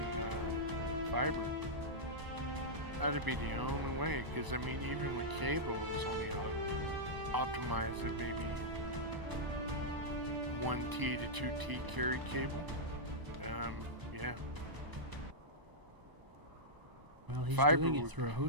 fiber. That'd be the only way, because I mean, even with cable, it's only optimized at maybe 1T to 2T carried cable. Yeah. Well, he's Fiber doing it would- through a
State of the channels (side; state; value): left; late; 1.0 ms